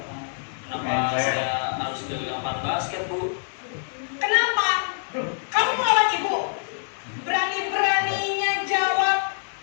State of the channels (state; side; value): silent; right; digital silence